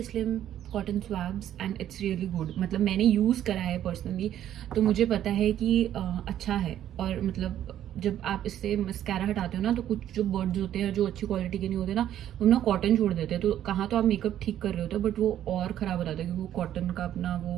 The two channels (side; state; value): left; quieter; 11.3 dB